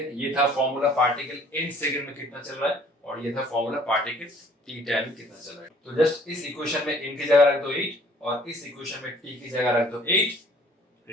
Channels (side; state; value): both; normal; correlation 0.56